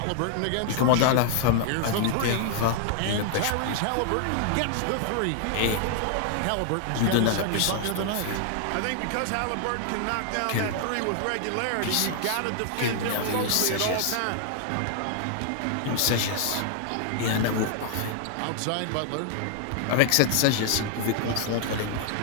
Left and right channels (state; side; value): different; both; correlation 0.00